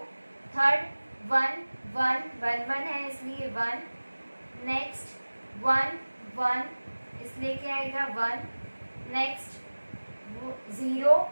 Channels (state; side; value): inverted; both; correlation -1.00